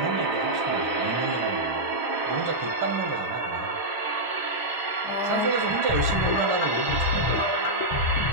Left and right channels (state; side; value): late; right; 1.0 ms